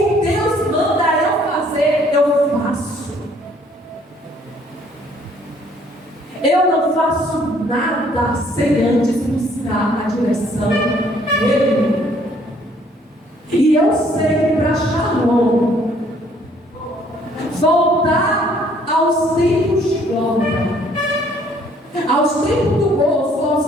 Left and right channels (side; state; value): both; normal; correlation 0.62